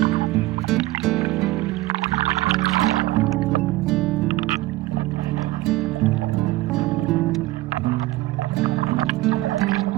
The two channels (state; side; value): quieter; left; 18.2 dB